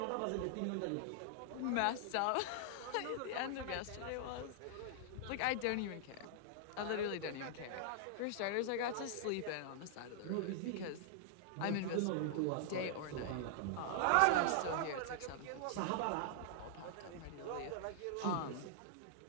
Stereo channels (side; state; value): both; different; correlation -0.01